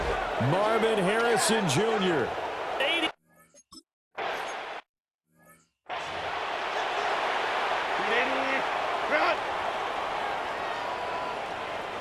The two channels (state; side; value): identical; both; correlation 1.00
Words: Marvin Harrison Jr. 80.